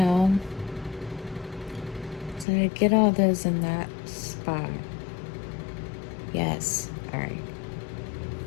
so to get all those in that spot. Yes. All right.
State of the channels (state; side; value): drops out; right; at 2.5 s